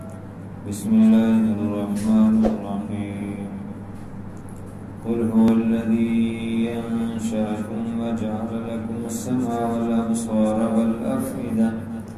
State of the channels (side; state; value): both; identical; correlation 1.00